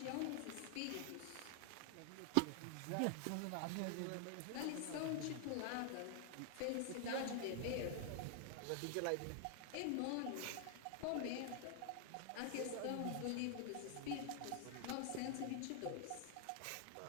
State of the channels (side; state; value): both; different; correlation 0.00